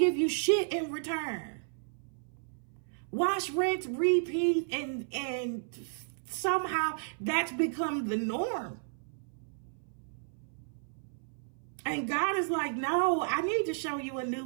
you shit in return. Wash, rinse, repeat, and somehow that's become the norm. And God is like, no, I need to show you a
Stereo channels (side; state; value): left; silent; 56 dB below the other